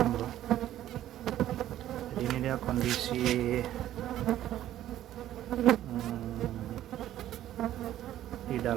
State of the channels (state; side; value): quieter; left; 12.7 dB